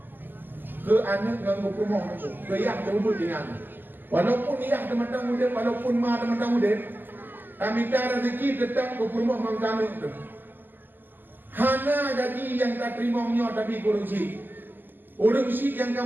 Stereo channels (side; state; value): left; late; 0.090 ms